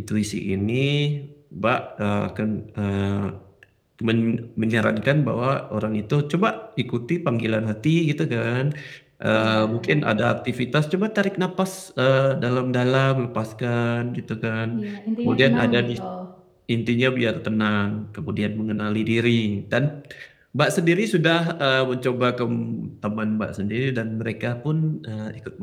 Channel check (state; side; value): identical; both; correlation 1.00